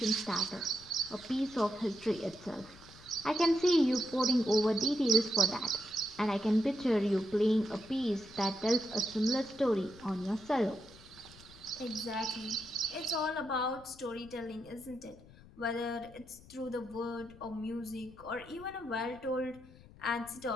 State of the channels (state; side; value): noise; left; rumble, 22 dB below the sound